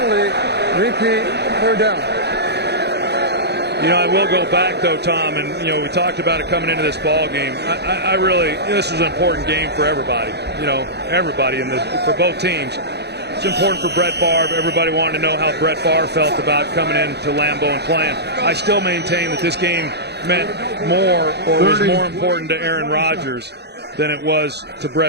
repeat, 3rd down. You know, I will go back, though, Tom, and, you know, we talked about it coming into this ball game. I really, this was an important game for everybody, you know, everybody for both teams. It's important for Brett Favre. Everybody wanted to know how Brett Favre felt about coming into Lambeau and playing. I still maintain that this game meant more, or was more important to Aaron Rodgers than it was to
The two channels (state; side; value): late; left; 0.48 ms